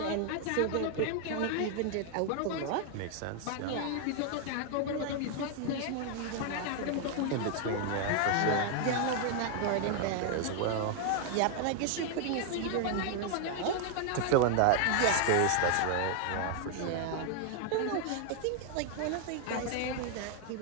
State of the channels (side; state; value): both; different; correlation 0.00